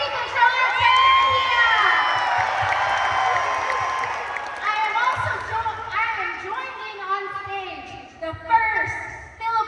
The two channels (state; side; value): identical; both; correlation 1.00